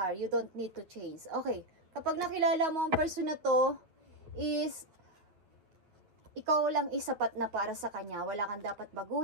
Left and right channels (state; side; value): late; left; 9.3 ms